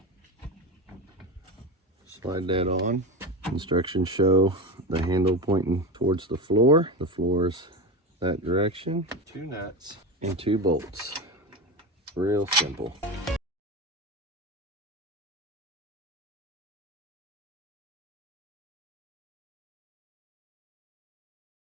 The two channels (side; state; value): both; normal; correlation 0.21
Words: Slide that on. Instructions show the handle pointing towards the floor. The floor is that direction. 2 nuts and 2 bolts. Real simple.